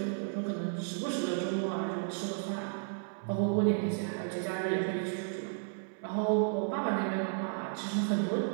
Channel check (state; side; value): silent; left; 56 dB below the other